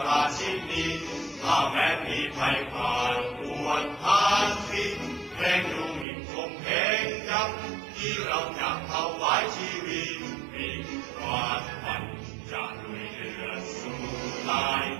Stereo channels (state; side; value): drops out; left; at 6.1 s